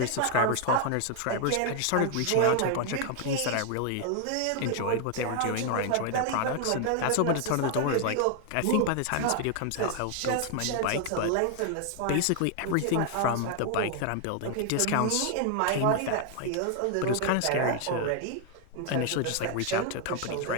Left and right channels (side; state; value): both; different; correlation 0.00